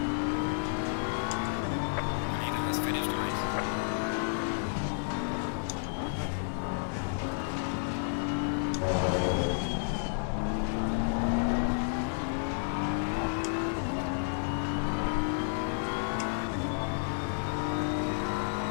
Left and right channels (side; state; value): right; silent; digital silence